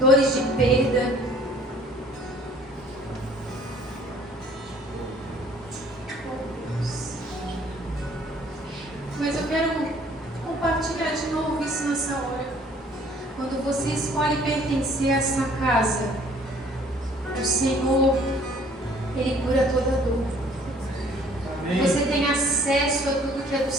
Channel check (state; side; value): normal; both; correlation 0.56